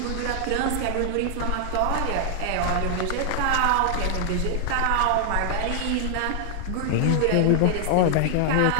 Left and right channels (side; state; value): both; different; correlation 0.00